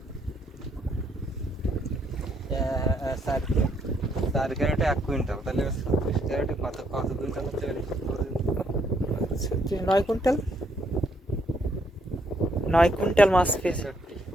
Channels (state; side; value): normal; both; correlation 0.71